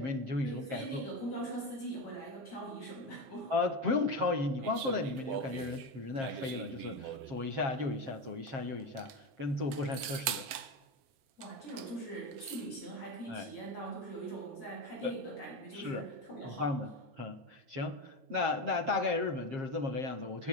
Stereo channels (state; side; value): late; left; 7.7 ms